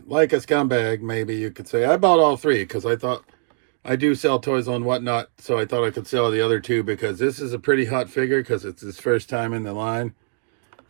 like a scumbag, maybe you could say, I bought all 3 because I thought I do sell toys on Whatnot. So I thought I could sell the other 2 because this is a pretty hot figure because it's his first time in the line.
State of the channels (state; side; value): silent; left; digital silence